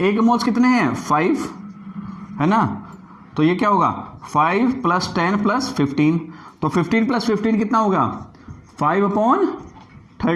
के मोल्स कितने हैं, 5 है ना, तो ये क्या होगा 5 प्लस 10 प्लस 15, तो 15 प्लस 15 कितना होगा,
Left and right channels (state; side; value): identical; both; correlation 1.00